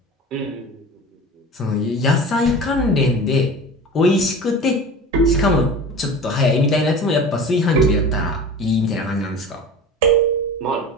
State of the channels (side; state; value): both; normal; correlation 0.35